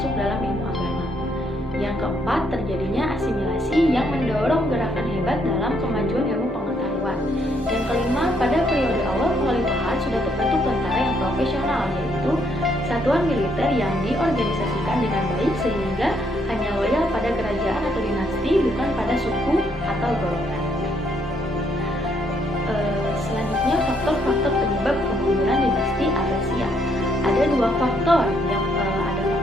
dalam ilmu agama. Yang keempat, terjadinya asimilasi yang mendorong gerakan hebat dalam kemajuan ilmu pengetahuan. Yang kelima, pada periode awal kekhalifahan sudah terbentuk tentara yang profesional, yaitu satuan militer yang diorganisasikan dengan baik sehingga hanya loyal pada kerajaan atau dinasti, bukan pada suku atau golongan. Selanjutnya, faktor-faktor penyebab kemunduran dinasti Abbasiyah. Ada dua faktor, yang ada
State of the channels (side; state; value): both; normal; correlation 0.72